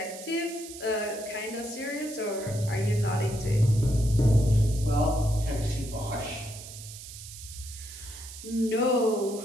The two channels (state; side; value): noise; right; hiss, 13 dB below the sound